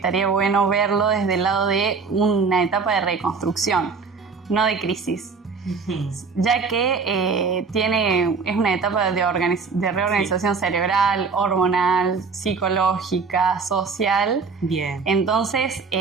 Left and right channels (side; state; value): left; quieter; 5.0 dB